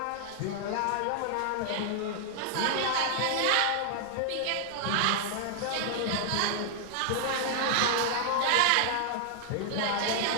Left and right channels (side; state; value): both; different; correlation 0.00